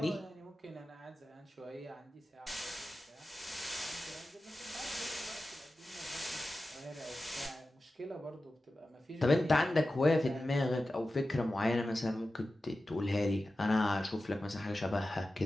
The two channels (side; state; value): both; normal; correlation 0.94